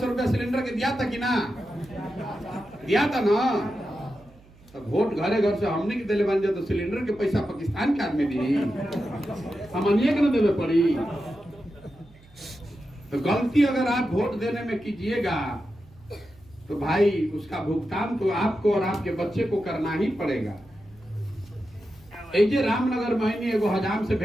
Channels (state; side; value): noise; right; hum, 26 dB below the sound